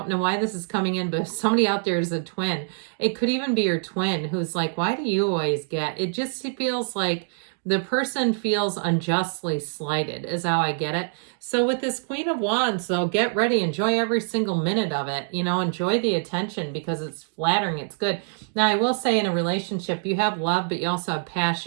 know why this is coming in, but if somebody out there is a twin, it could even be your twin who's like, why do you always get? It just feels like The person feels unjustly slighted is how I get it. So with this Queen of Wands, though, get ready. Enjoy every single minute of it. You know, enjoy the attention because it's flattering. It's good. Now, I will say in a relationship, you have love, but you also have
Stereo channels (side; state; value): left; silent; digital silence